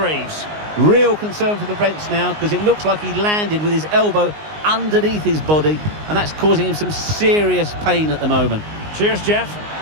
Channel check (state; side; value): late; left; 19 ms